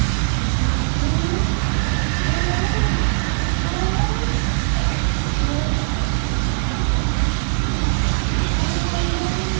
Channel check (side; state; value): left; silent; digital silence